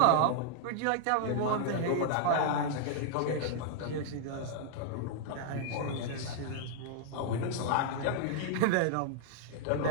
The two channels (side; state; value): both; different; correlation -0.01